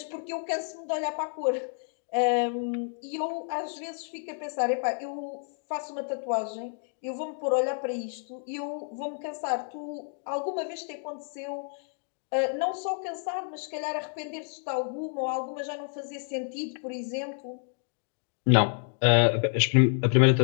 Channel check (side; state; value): right; silent; 58 dB below the other